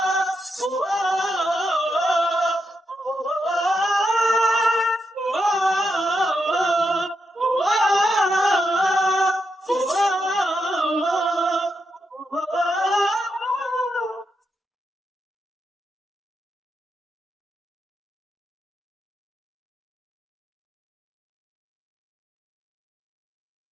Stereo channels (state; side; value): normal; both; correlation 0.84